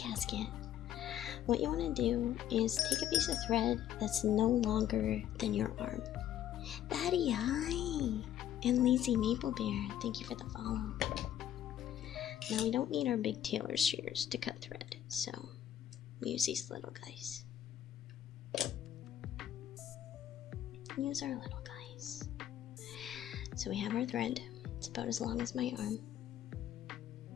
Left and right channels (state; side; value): quieter; right; 11.2 dB